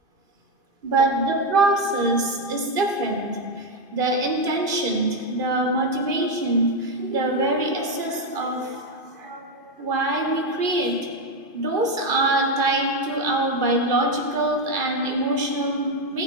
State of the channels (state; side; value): late; left; 2.5 ms